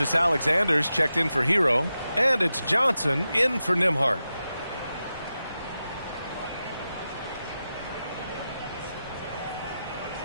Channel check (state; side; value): inverted; both; correlation -0.91